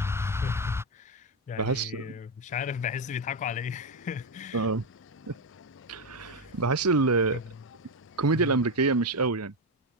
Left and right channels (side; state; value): both; normal; correlation 0.08